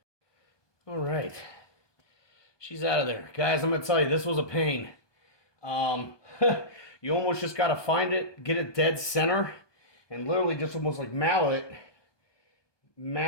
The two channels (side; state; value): right; late; 1.2 ms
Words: All right, she's out of there. Guys, I'm going to tell you, this was a pain. You almost just got to find it, get it dead center, and literally just almost like mallet